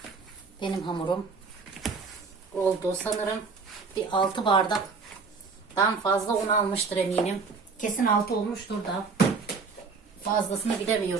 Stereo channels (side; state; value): left; quieter; 4.8 dB